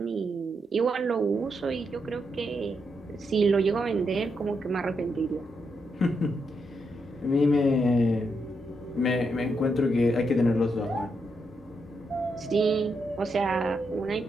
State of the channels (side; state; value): both; normal; correlation 0.82